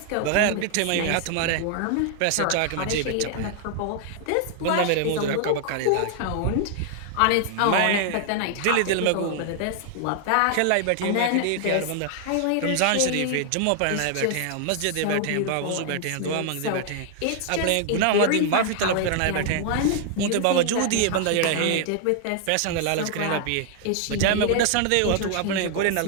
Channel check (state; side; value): different; both; correlation 0.00